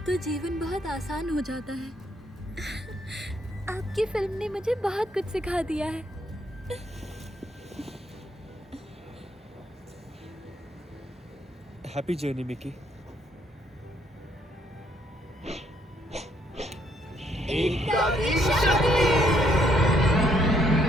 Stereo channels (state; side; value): normal; both; correlation 0.70